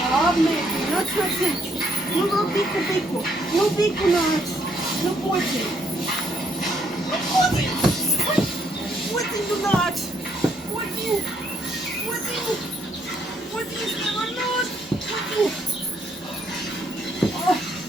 labi, mēģi. Nāc. Nu, vēl biku. Nu, biku nāc. Nu, podzi. Nu, podzi. Podzi, nu, nāc. Podzi. Podzi, es nevaru nāc. Podzi.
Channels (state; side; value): normal; both; correlation 0.70